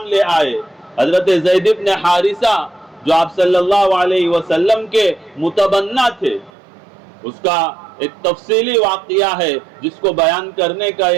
لے آئے۔ حضرت زید بن حارثہ جو آپ صلی اللہ علیہ وسلم کے متبنہ تھے، اس کا ایک تفصیلی واقعہ ہے جس کو بیان کرنے کا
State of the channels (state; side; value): drops out; left; at 6.5 s